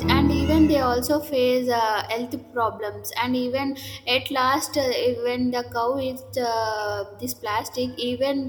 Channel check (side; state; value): both; identical; correlation 1.00